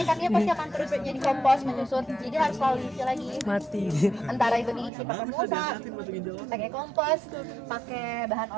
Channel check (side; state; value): left; drops out; at 4.9 s